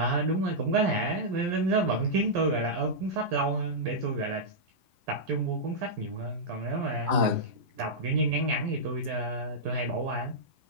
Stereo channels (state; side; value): late; left; 11 ms